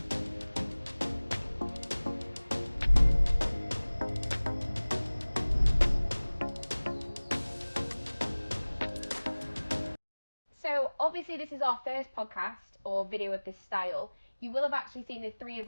So, obviously, this is our first podcast or video of this style. You will have actually seen the three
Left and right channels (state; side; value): inverted; both; correlation -1.00